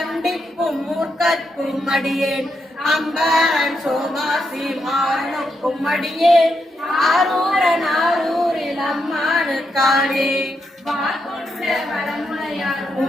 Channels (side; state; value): both; normal; correlation 0.82